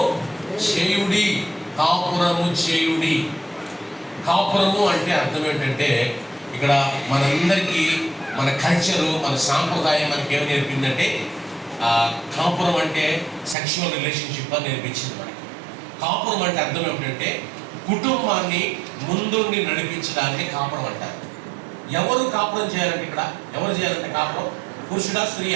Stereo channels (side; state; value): left; drops out; at 13.6 s